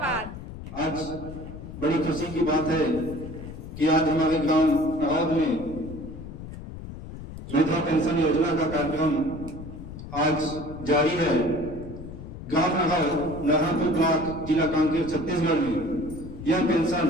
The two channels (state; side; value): noise; left; rumble, 11 dB below the sound